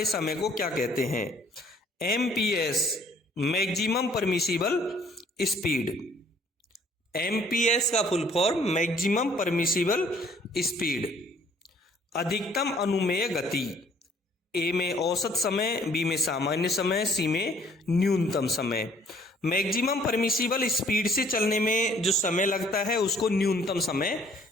समय को क्या कहते हैं? MPS, maximum permissible speed. MPS का full form maximum permissible speed. अधिकतम अनुमेय गति। ए में औसत समय, बी में सामान्य समय, सी में न्यूनतम समय। मैक्सिमम परमिसिबल स्पीड से चलने में जो समय लगता है उसको न्यूनतम समय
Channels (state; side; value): normal; both; correlation 0.59